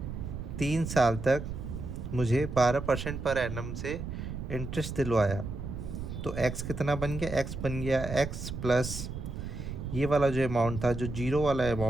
3 साल तक मुझे 12% पर एनम से इंटरेस्ट दिलवाया। तो x कितना बन गया, x बन गया x प्लस ये वाला जो अमाउंट था, जो 0 वाला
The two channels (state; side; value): noise; right; rumble, 7 dB below the sound